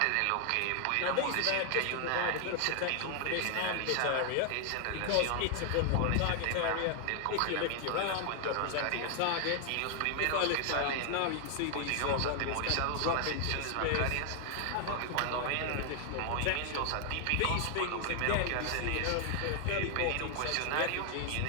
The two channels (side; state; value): both; different; correlation 0.00